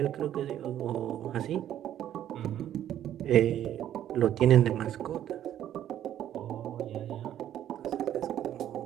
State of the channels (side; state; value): left; quieter; 11.3 dB